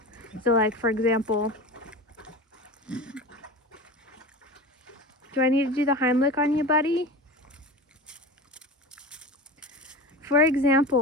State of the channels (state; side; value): normal; both; correlation 0.31